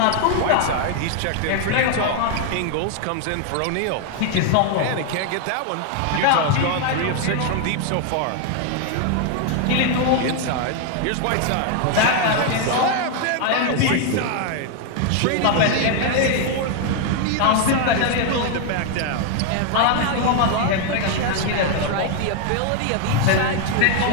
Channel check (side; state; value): both; different; correlation 0.00